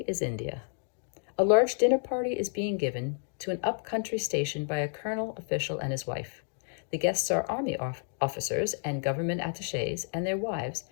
is India. A large dinner party is being given to an up-country station by a colonel official and his wife. The guests are army officers and government attachés and their wives,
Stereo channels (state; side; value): silent; right; 58 dB below the other